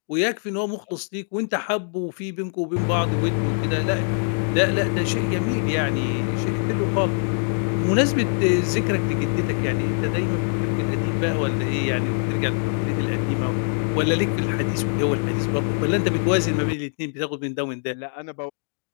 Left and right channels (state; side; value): silent; right; digital silence